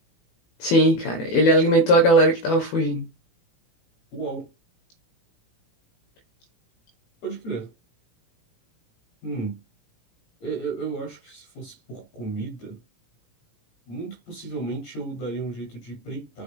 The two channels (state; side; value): late; right; 18 ms